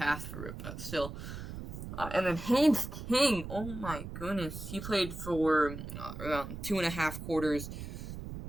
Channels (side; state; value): right; noise; rumble, 9 dB below the sound